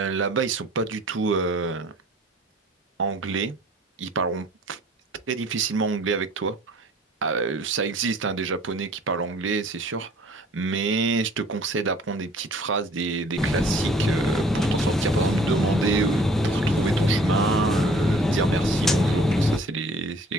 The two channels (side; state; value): both; normal; correlation 0.52